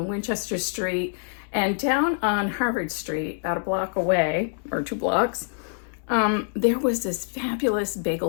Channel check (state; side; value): silent; right; digital silence